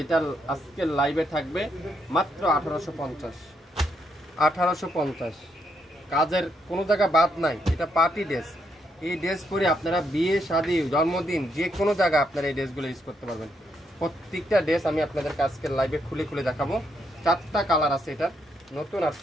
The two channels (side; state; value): both; normal; correlation 0.77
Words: আজকের লাইভে থাকবে মাত্র 1850। কাজের কোনো জায়গা বাদ নাই, এটা পার্টি ড্রেস। এই ড্রেস পরে আপনারা বিয়ে, শাদী, জন্মদিন যে কোনো জায়গায় আপনারা এই ড্রেসগুলো ইউজ করতে পারবেন। প্রত্যেকটা ড্রেস আমি আপনাদেরকে আজকের লাইভে খুলে খুলে দেখাবো। 4টা কালার আছে, এটা নতুন